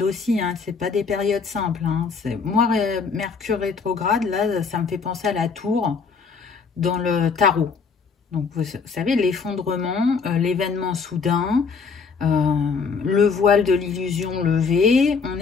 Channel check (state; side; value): quieter; right; 5.2 dB